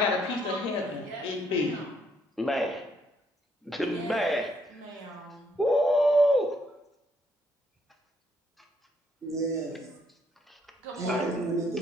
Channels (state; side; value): normal; both; correlation 0.71